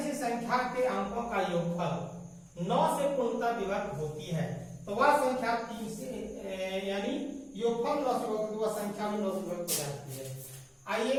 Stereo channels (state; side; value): identical; both; correlation 1.00